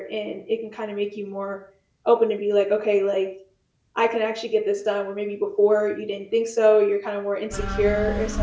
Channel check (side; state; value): both; identical; correlation 1.00